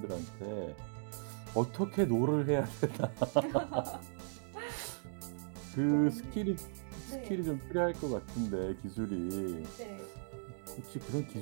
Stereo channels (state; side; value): silent; left; digital silence